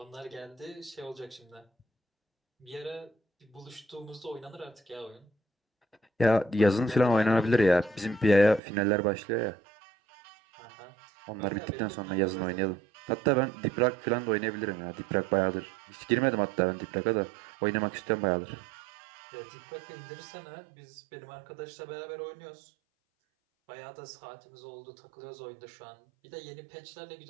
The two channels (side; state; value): left; drops out; at 8.6 s